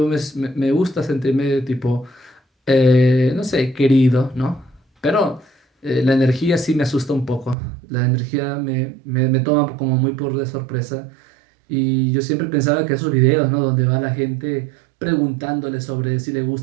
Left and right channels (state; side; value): drops out; left; at 7.6 s